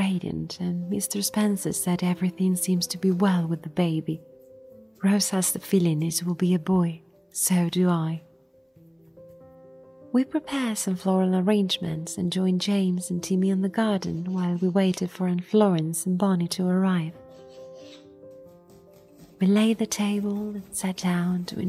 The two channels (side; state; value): both; identical; correlation 1.00